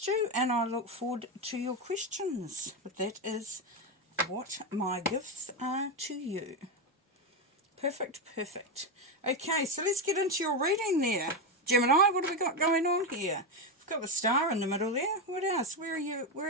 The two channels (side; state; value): both; normal; correlation 0.10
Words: you, and I look forward to your questions. But that is what my gifts are to you. Perfect, perfect. Okay, so let's get into your reading there. Gemini, what have we got going on here? We've got the star in the middle there. What else? Where